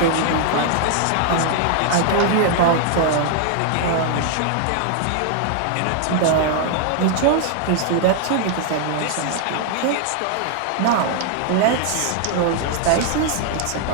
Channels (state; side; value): different; both; correlation 0.00